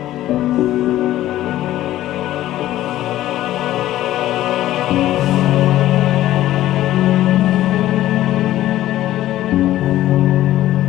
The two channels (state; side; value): quieter; right; 14.2 dB